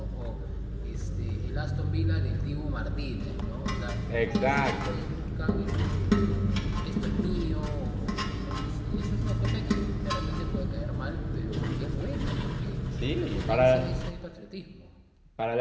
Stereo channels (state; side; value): identical; both; correlation 1.00